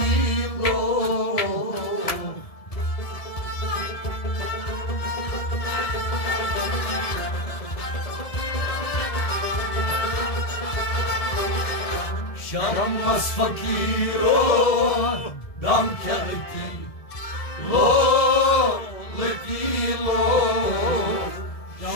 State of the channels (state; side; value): late; right; 1.7 ms